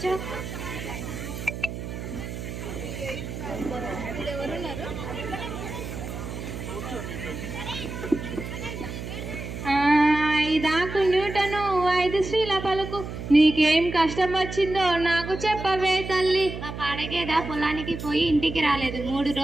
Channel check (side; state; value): right; noise; hum, 8 dB below the sound